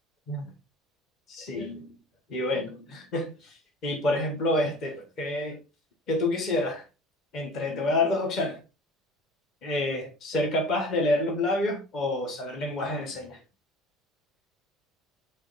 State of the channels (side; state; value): both; normal; correlation 0.41